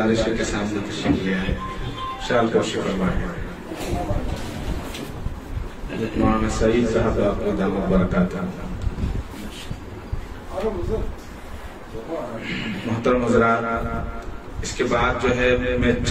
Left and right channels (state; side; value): identical; both; correlation 1.00